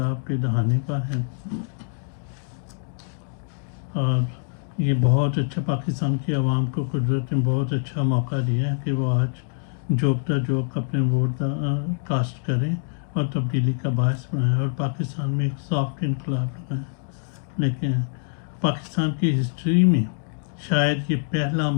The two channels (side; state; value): right; silent; digital silence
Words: کے دہانے پر ہے، اور یہ بہت اچھا پاکستان کی عوام کو قدرت نے بہت اچھا موقع دیا ہے کہ وہ آج جوکتا جوک اپنے ووٹ کاسٹ کریں اور تبدیلی کا باعث بنائیں اور پاکستان میں ایک سافٹ انقلاب لگائیں. لیکن پاکستان کی ہسٹری میں شاید یہ پہلا